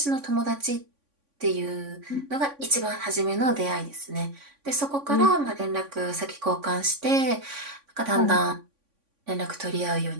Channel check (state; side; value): late; left; 3.5 ms